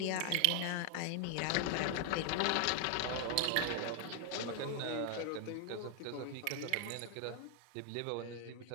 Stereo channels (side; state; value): both; different; correlation 0.00